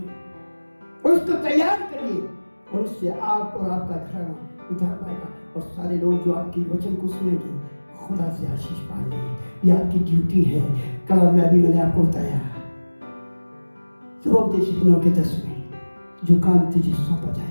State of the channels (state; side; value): inverted; both; correlation -1.00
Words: उसको तैयार करिए और उससे आप और आपका घराना उधार पाएगा। और सारे लोग जो आपकी वचन को सुनेंगे खुदा से आशीष पाएंगे। ये आपकी ड्यूटी है। कलाम में अभी मैंने आपको बताया, सुबह 9:10 में जो काम तुझे सौंपा